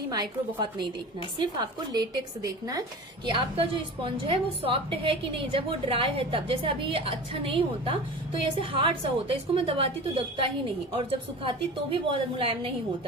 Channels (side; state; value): both; normal; correlation 0.34